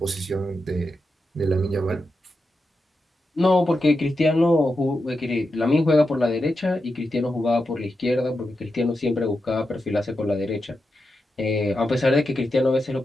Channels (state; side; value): normal; both; correlation 0.88